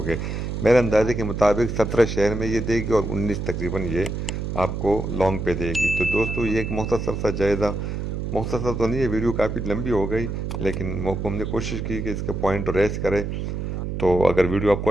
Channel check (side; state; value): right; noise; hum, 3 dB below the sound